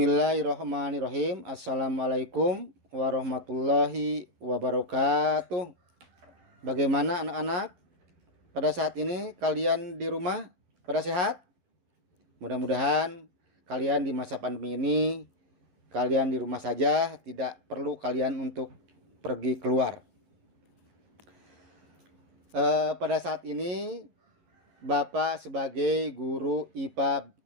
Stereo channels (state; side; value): late; left; 11 ms